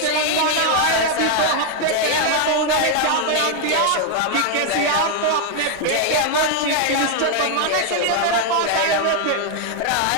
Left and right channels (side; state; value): both; different; correlation 0.00